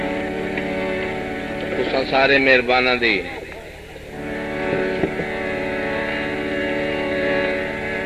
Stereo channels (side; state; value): both; identical; correlation 1.00